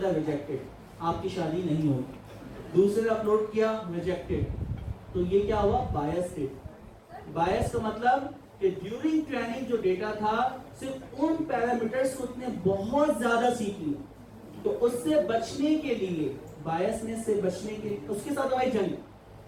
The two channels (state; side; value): identical; both; correlation 1.00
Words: है रिजेक्टेड, आपकी शादी नहीं होगी। दूसरे ने अपलोड किया, रिजेक्टेड। तो ये क्या हुआ? बायस डेटा। बायस का मतलब कि ड्यूरिंग ट्रेनिंग जो डेटा था सिर्फ उन पैरामीटर्स को उसने बहुत ज्यादा सीख लिया। तो उससे बचने के लिए, बायसनेस से बचने के लिए, उसके साथ हमारी जंग,